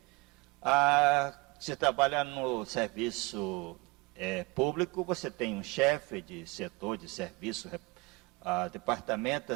Se trabalha no serviço público, você tem um chefe de setor, de serviço, departamento,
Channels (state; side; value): quieter; left; 25.6 dB